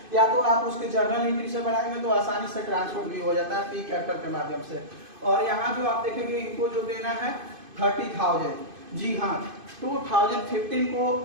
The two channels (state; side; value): late; left; 2.5 ms